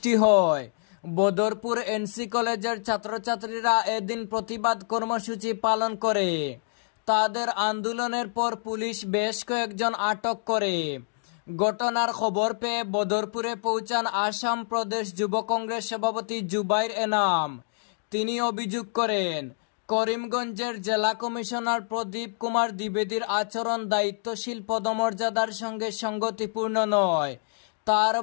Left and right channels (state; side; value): silent; right; digital silence